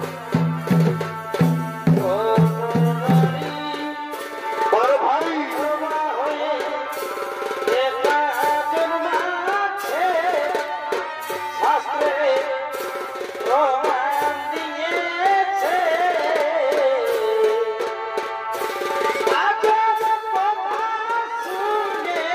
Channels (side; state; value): both; identical; correlation 1.00